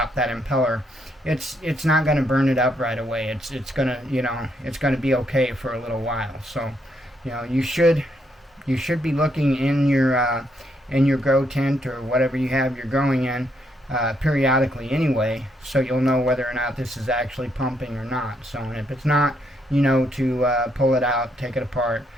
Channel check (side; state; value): both; normal; correlation 0.75